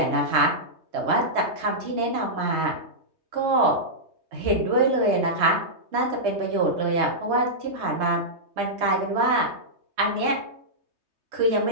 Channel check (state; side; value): late; left; 3.2 ms